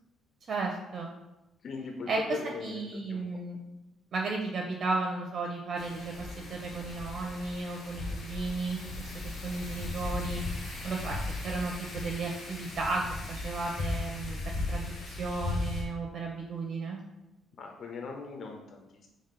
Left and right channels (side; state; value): both; normal; correlation 0.74